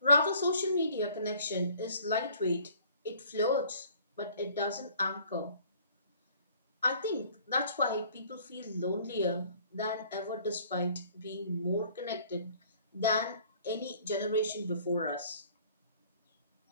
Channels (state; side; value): inverted; both; correlation -0.55